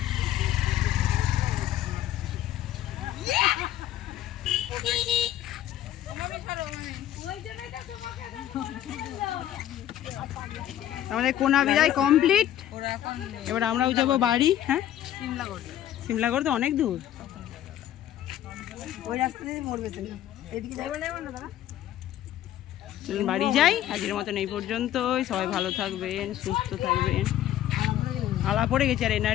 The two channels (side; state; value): right; quieter; 12.2 dB